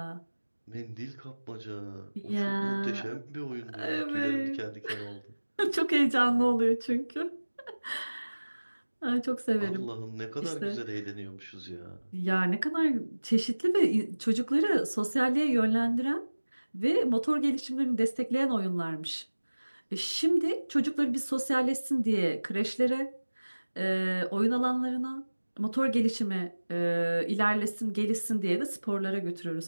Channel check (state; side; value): inverted; both; correlation -1.00